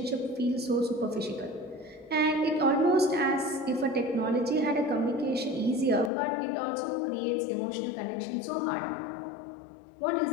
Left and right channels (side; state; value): right; drops out; at 6.1 s